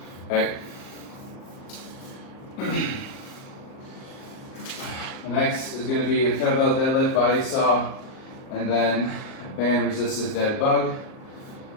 Okay. The next is going to be a kettlebell deadlift, body saw, and then a band resisted dead bug.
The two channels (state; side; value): late; right; 38 ms